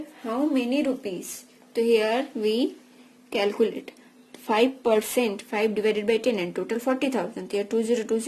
how many rupees? So here we calculate 5%, 5 divided by 10 and total 40,000. Here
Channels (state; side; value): identical; both; correlation 1.00